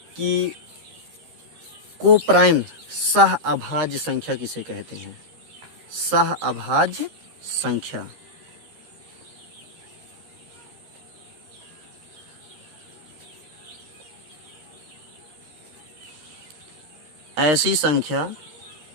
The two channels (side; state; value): left; late; 13 ms